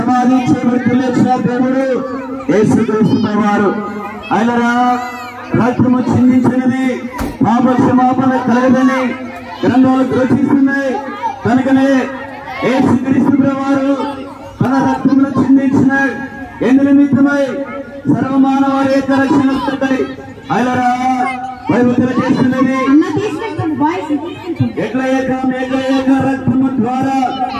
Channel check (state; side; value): identical; both; correlation 1.00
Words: చేయబడి లేచిన దేవుడు యేసుక్రీస్తు ప్రభువారు. ఆయనరా రక్తము చిందించినది పాప క్షమాపణ కలగదని గ్రంథాలు ఘోషిస్తున్నాయి. కనుకనే యేసుక్రీస్తు ప్రభువారు తన రక్తమును చిందించిన ఎందు నిమిత్తమై సర్వమానవారి యొక్క రక్షణ ఆయనరా బైబిల్ తెలియజేస్తున్నది. ఎట్ల ఏక రక్తము ద్వారా